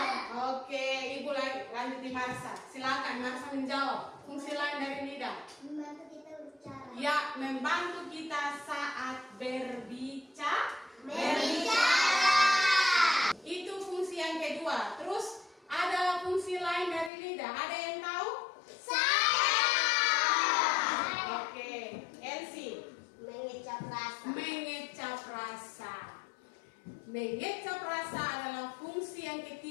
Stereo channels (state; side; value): drops out; right; at 17.1 s